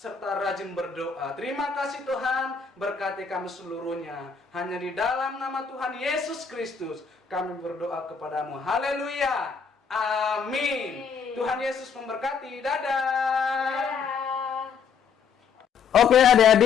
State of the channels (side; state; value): right; quieter; 6.2 dB